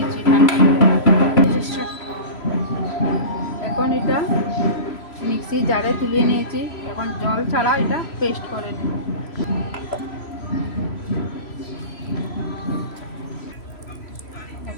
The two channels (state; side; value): late; right; 3.0 ms